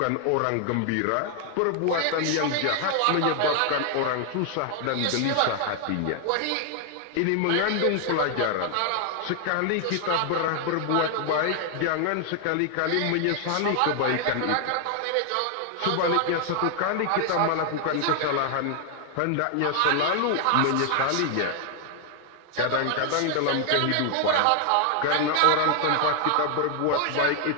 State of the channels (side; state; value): both; different; correlation 0.00